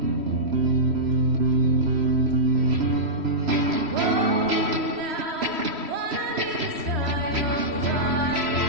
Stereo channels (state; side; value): late; left; 3.0 ms